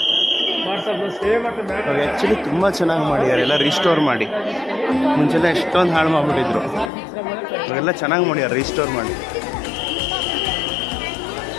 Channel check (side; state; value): right; drops out; at 6.9 s